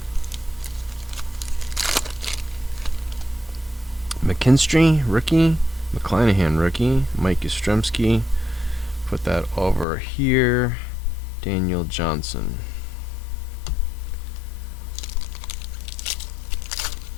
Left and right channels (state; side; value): drops out; right; at 9.9 s